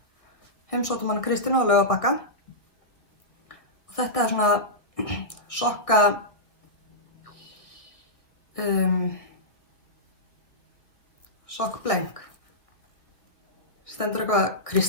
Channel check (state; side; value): late; right; 1.7 ms